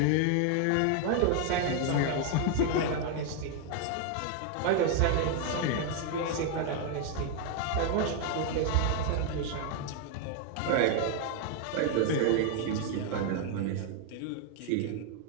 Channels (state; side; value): different; both; correlation 0.00